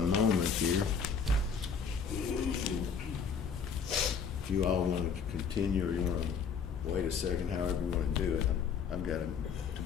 here. If you all want to continue or you want to wait a second, however you want to do it. I've got to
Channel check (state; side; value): quieter; right; 6.2 dB